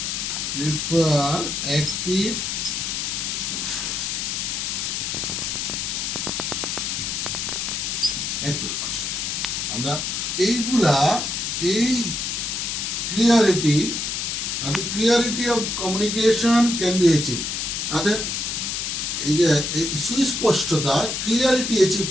Prefer active construction. আমরা এইগুলা এই clarity of communication can be achieve. অর্থাৎ এই যে সুস্পষ্টতা, ক্লিয়ারিটি অ্যাচিভ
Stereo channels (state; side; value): noise; left; hiss, 2 dB below the sound